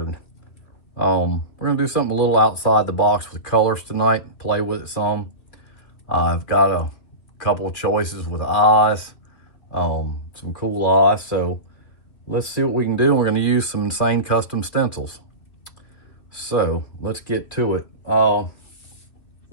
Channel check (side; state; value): right; late; 2.9 ms